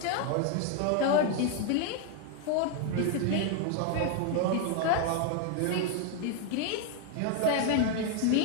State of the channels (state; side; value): different; both; correlation 0.01